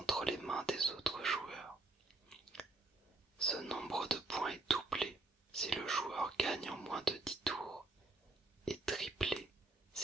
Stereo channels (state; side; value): quieter; left; 3.1 dB